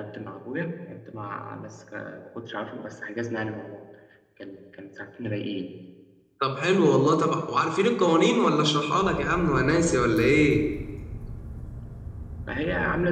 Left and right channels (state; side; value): identical; both; correlation 1.00